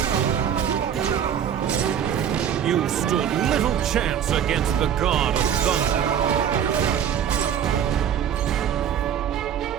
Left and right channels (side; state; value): left; quieter; 8.9 dB